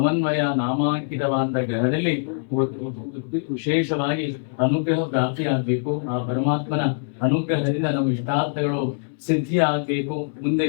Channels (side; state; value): right; silent; 61 dB below the other